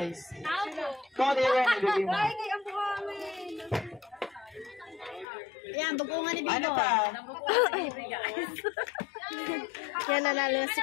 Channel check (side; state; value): right; drops out; at 5.2 s